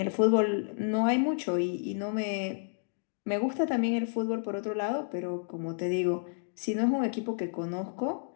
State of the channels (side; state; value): right; silent; digital silence